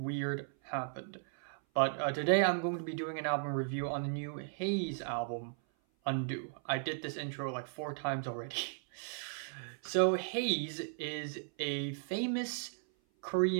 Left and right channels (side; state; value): left; silent; 54 dB below the other